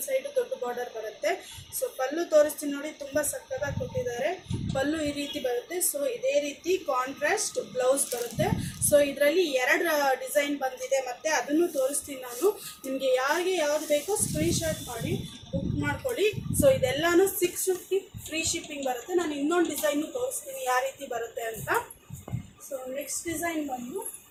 ಸೈಡು ದೊಡ್ಡ ಬಾರ್ಡರ್ ಬರುತ್ತೆ. ಸೊ ಪಲ್ಲು ತೋರಿಸ್ತೀನಿ ನೋಡಿ, ತುಂಬ ಸಕ್ಕತ್ತಾಗಿ ಕೊಟ್ಟಿದ್ದಾರೆ. ಪಲ್ಲು ಈ ರೀತಿ ಬರುತ್ತೆ. ಸೊ ಇದೇ ರೀತಿ ಕಾಂಟ್ರಾಸ್ಟ್ ಬ್ಲೌಸ್ ಬರುತ್ತೆ. ಸೊ ಇದರಲ್ಲಿ ಎರಡು ಡಿಸೈನ್ ಬಂದಿದೆ, ಮತ್ತು ಅದನ್ನು ತೋರಿಸ್ತೀನಿ ನಾನು. ನಿಮಗೆ ಯಾರಿಗೆ ಯಾವುದು ಬೇಕೋ ಸ್ಕ್ರೀನ್ಶಾಟ್ ಮಾಡಿ ಬುಕ್ ಮಾಡ್ಕೊಳ್ಳಿ. ಸೊ ಇದೆಲ್ಲನೂ 650 ಫ್ರೀ ಶಿಪ್ಪಿಂಗ್ ಬರುತ್ತೆ. ನಾನು ಇನ್ನೊಂದು ಡಿಸೈನು ತೋರಿಸ್ತೀನಿ ಯಾವ ರೀತಿ ಬರುತ್ತೆ ಅಂತ. ಸೊ ನೆಕ್ಸ್ಟ್ ಡಿಸೈನ್ ಬಂದು,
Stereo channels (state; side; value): identical; both; correlation 1.00